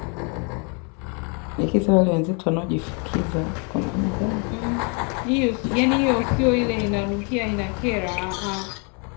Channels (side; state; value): right; quieter; 36.3 dB